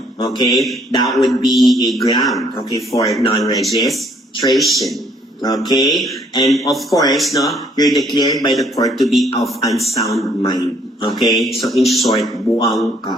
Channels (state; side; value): normal; both; correlation 0.64